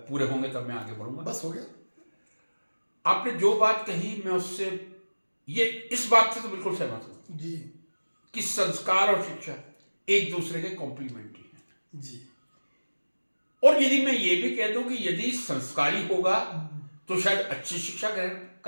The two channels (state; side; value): inverted; both; correlation -1.00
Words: पूरे होंगे तब मैं आगे बढ़ूंगा। बस हो गया। आपने जो बात कही मैं उससे इस बात से तो बिल्कुल सहमत हूं जी कि संस्कार और शिक्षा एक दूसरे के कॉम्प्लीमेंट्री हैं जी। और यदि मैं ये भी कह दूं कि यदि संस्कारी होगा तो शायद अच्छी शिक्षा ग्रहण